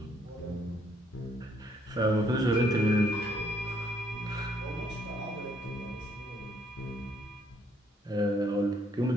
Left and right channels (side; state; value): both; normal; correlation 0.68